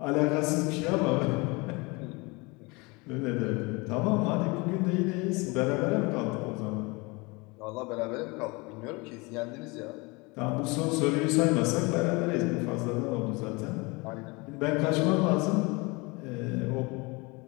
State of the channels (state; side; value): quieter; right; 26.4 dB